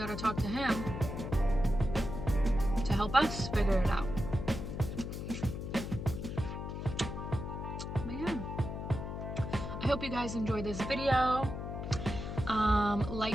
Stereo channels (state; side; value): noise; left; hum, 6 dB below the sound